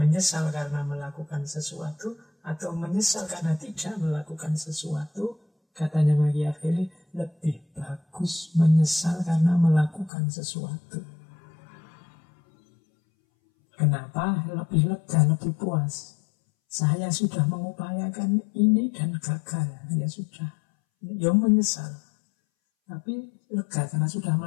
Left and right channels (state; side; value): drops out; right; at 10.1 s